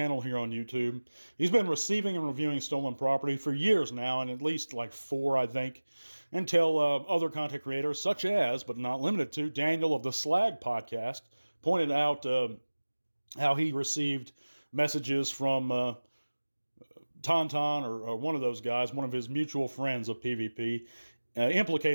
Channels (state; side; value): inverted; both; correlation -1.00